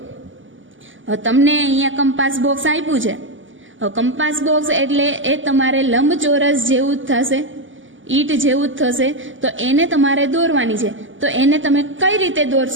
હવે તમને અહીંયા કંપાસ બોક્સ આપ્યું છે. હવે કંપાસ બોક્સ એટલે એ તમારે લંબચોરસ જેવું જ થશે, ઈટ જેવું જ થશે, તો એને તમારે દોરવાની છે. તો એને તમે કઈ રીતે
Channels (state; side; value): late; left; 0.57 ms